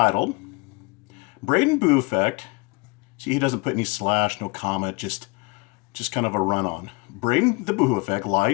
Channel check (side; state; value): right; quieter; 27.6 dB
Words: Braden Boo Effect. See, he doesn't put any slash, no comma, just kind of a run-on. Braden the Boohoo Effect,